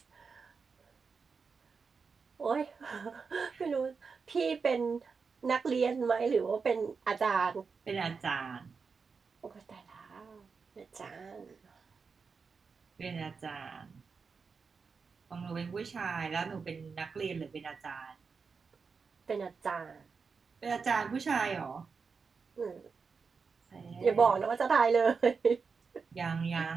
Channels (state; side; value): quieter; left; 5.2 dB